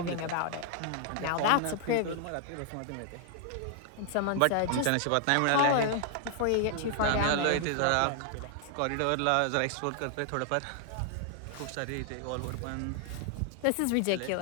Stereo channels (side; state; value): both; different; correlation 0.00